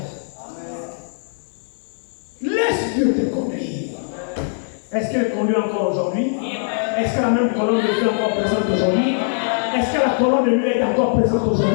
Laisse Dieu te conduire. Est-ce qu'elle conduit encore aujourd'hui? Est-ce que la même colonne de feu est encore présente aujourd'hui? Est-ce que la colonne de nuit est encore présente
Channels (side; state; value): right; silent; 57 dB below the other